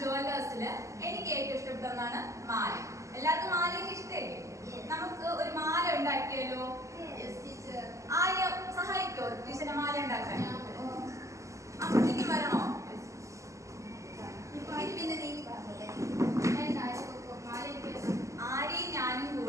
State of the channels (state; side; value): late; left; 0.15 ms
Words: ജുവല്ലേഴ്സില് എനിക്ക് ഏറ്റവും ഇഷ്ടപ്പെട്ട ഒന്നാണ് മാല. എല്ലാവർക്കും മാലയൊക്കെ ഇഷ്ടമല്ലേ? നമുക്ക് ഒരു മാല ഉണ്ടാക്കിയല്ലോ. ആരെയും സഹായിക്കോ ടീച്ചറിന്റെ മാല ഉണ്ടാക്കാൻ? അപ്പത്തേക്ക് വരണോ? ആരെയും ഞാനും